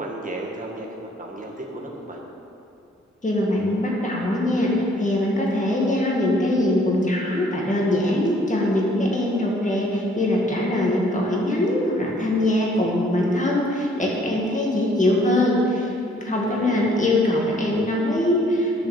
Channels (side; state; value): both; normal; correlation 0.61